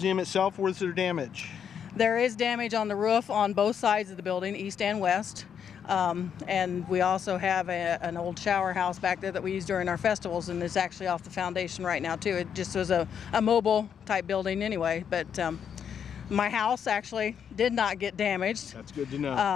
itself. Where's there damage? There is damage on the roof on both sides of the building, east and west. And we also have an old shower house back there that we use during our festivals, and it's actually off the foundation right now too. It just was a mobile type building anyway, but my house actually did not get damaged. That's good to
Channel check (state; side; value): quieter; right; 7.9 dB